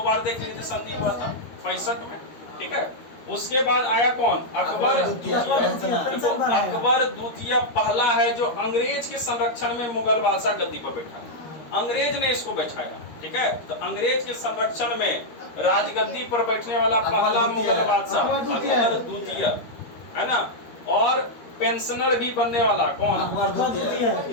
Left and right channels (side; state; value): right; late; 13 ms